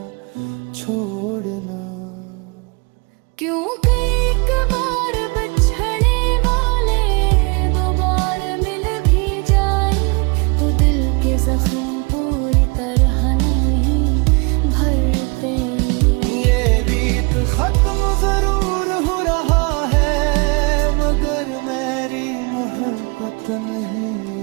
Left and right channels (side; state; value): left; quieter; 30.8 dB